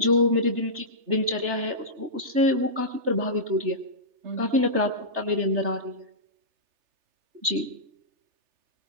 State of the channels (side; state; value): left; late; 3.3 ms